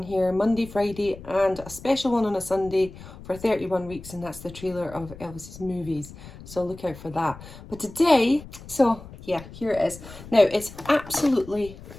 here Monday, Friday and a special one on a Sunday for 31 weeks, and that's the trailer of Elvis's movies. So look out for that. But today, so yeah, here it is. Now it's absolutely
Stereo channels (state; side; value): noise; left; rumble, 16 dB below the sound